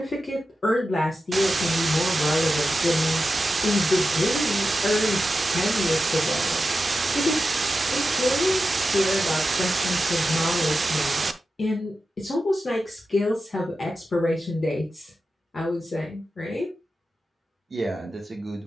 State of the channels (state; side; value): normal; both; correlation 0.91